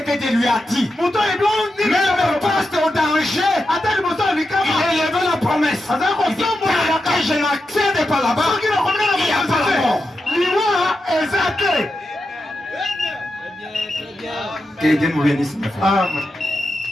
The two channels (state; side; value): normal; both; correlation 0.88